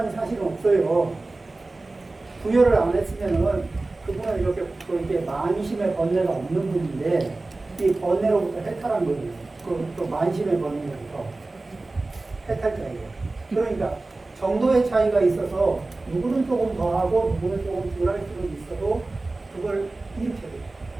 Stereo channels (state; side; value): quieter; left; 3.2 dB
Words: 사실은 없어요. 부여를 안 했으면은 그분은 이렇게 만심의 번뇌가 없는 분인데 이 번뇌로부터 해탈한 거예요. 또 만심의 번뇌로부터 해탈자예요. 그러니까 정도의 차이가 있어서 누구는 조금 더 하고 누구는 조금 덜 할 수도 있어도 그걸 일으켜요.